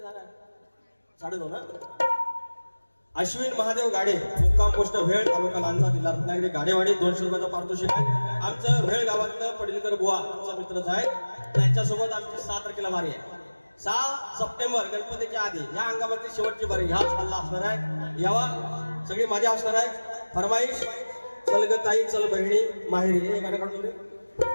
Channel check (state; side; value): inverted; both; correlation -1.00